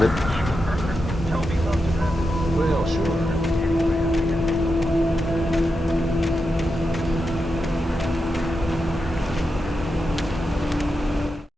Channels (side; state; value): both; normal; correlation 0.88